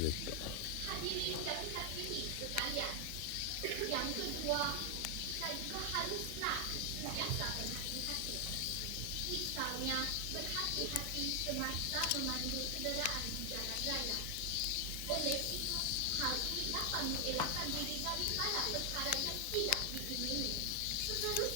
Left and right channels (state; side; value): different; both; correlation 0.00